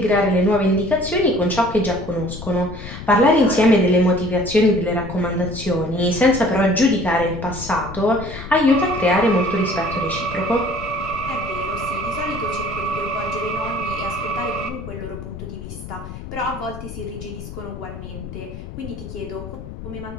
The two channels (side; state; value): left; noise; rumble, 11 dB below the sound